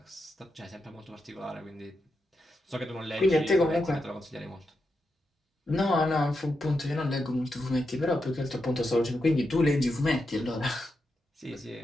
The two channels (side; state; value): both; normal; correlation 0.86